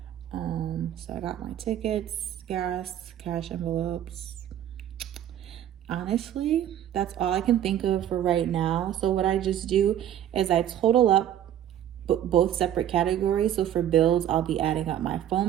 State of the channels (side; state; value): left; quieter; 11.0 dB